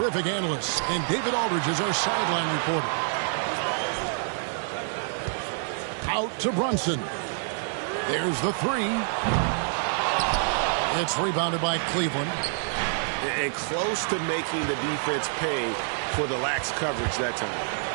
analysts, and David Aldridge is our sideline reporter. Out to Brunson. There's the three. It's rebounded by Cleveland. And close to making the defense pay for the lax coverage that time.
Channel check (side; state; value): left; silent; 60 dB below the other